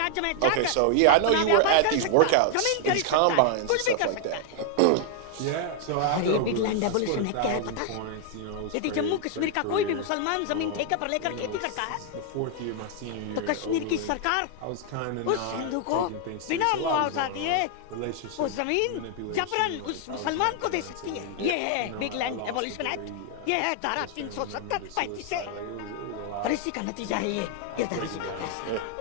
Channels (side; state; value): both; different; correlation 0.00